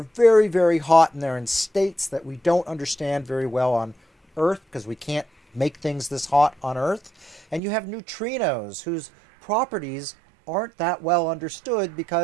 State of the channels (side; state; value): left; drops out; at 7.6 s